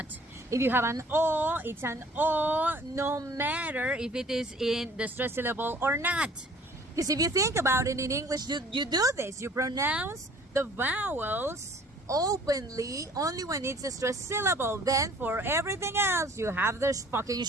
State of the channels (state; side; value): normal; both; correlation 0.53